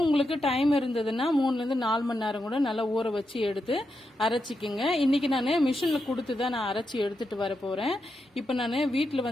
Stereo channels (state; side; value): normal; both; correlation 0.86